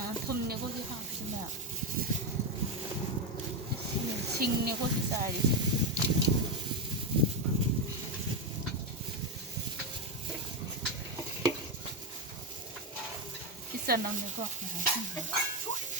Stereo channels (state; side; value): normal; both; correlation 0.09